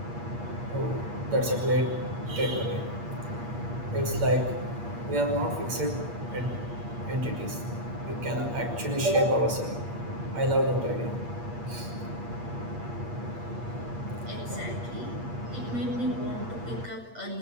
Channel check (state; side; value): late; left; 8.5 ms